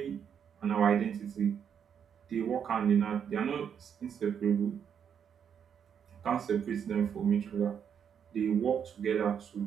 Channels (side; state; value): left; quieter; 7.9 dB